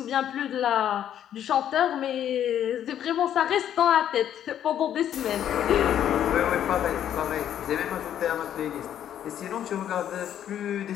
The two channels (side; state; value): right; quieter; 10.3 dB